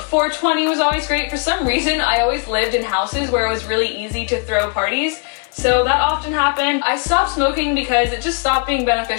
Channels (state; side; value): quieter; right; 36.5 dB